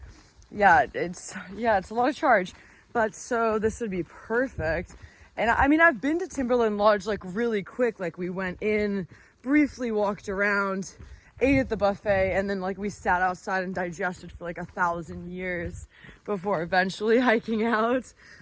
it's a lot of charge. But so this would be perfect. And I've been to Timberline Lodge like really quick. Like we went in, briefly walked around, ate at the buffet, and then like we sat outside and digested for like 1,000 years before eventually hiking out.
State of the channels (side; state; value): both; identical; correlation 1.00